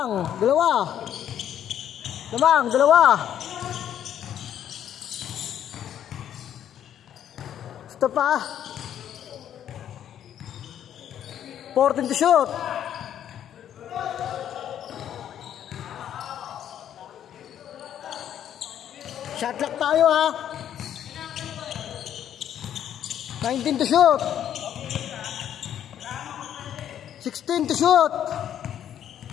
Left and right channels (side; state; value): right; quieter; 10.2 dB